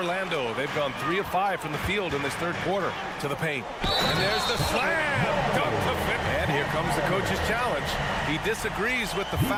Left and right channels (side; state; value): both; identical; correlation 1.00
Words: they've gone 3 of 5 from the field in this third quarter. To the paint. And there's the slam. Dunk to Finney. And here comes the coach's challenge. He disagrees with the